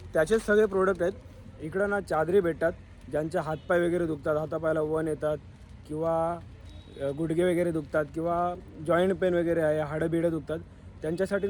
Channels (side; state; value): both; identical; correlation 1.00